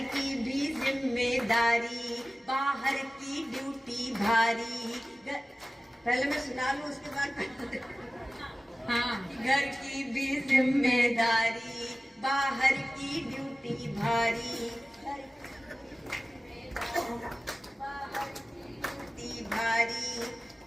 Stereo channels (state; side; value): normal; both; correlation 0.97